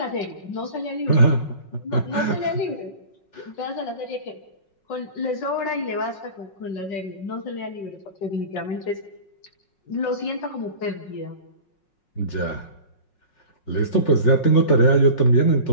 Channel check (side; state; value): right; late; 5.5 ms